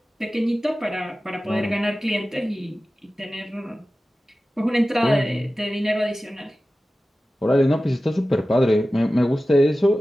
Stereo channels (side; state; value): both; normal; correlation 0.95